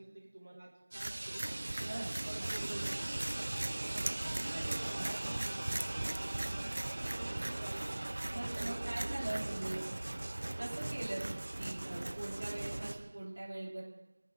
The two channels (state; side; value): inverted; both; correlation -1.00